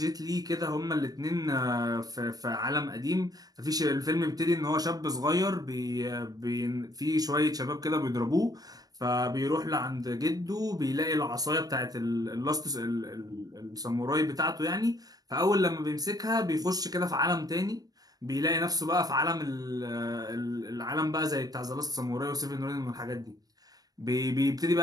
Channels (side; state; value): left; late; 0.18 ms